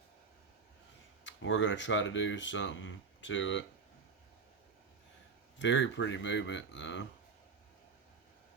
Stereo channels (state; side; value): quieter; left; 5.1 dB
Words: We're going to try to do something to it. Very pretty movement, though.